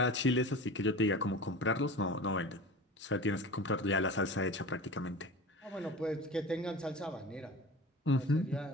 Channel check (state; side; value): normal; both; correlation 0.34